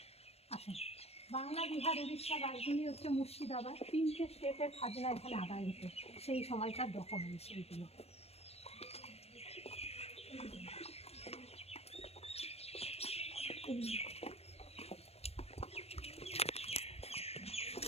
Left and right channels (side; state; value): right; late; 0.30 ms